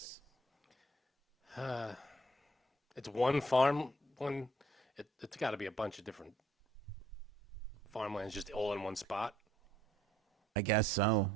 It's one farm. It's got to be a bunch of different farmlands just all in one spot. I guess so.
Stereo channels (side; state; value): both; normal; correlation 0.64